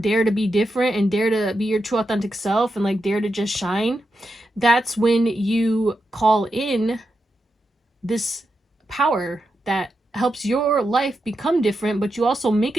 to be different and dare to be your true authentic self, and like dare to just shine, that's when you call in this power that helps your life become different, but you also make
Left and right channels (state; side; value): normal; both; correlation 0.87